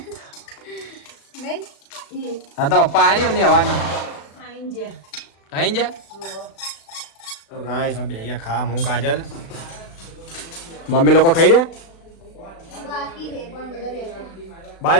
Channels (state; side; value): late; right; 36 ms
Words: નહીં હા તો પપ્પા આયા નહીં અમને હવાના આઈન જે આઈ જા તો ગાઈસ અમે બે ખા હું કાજલ મમ્મી લોકો ખાઈ રહ્યા બાકી છે પણ બધા બેઠા બાય